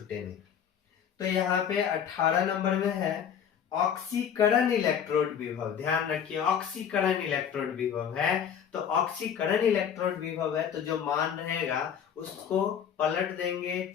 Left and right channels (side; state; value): right; quieter; 8.3 dB